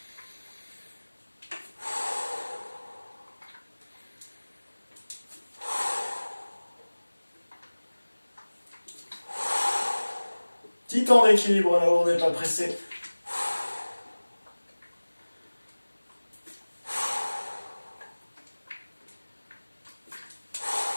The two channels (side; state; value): both; inverted; correlation -1.00